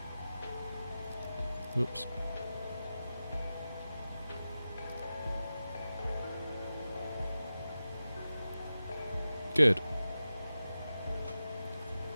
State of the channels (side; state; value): both; inverted; correlation -0.93